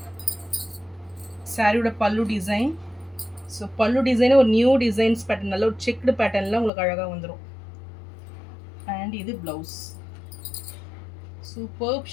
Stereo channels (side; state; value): right; drops out; at 6.7 s